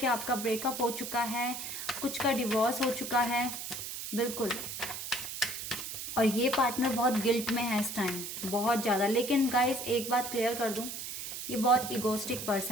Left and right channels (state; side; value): noise; right; hiss, 7 dB below the sound